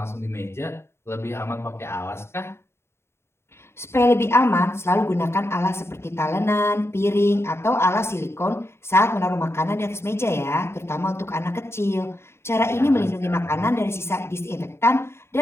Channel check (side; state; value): right; late; 0.12 ms